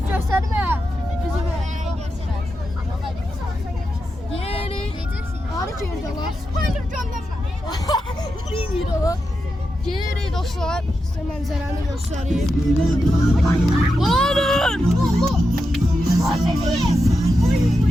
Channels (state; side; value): normal; both; correlation 0.87